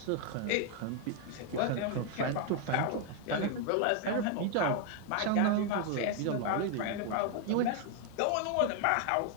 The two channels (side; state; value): both; different; correlation 0.00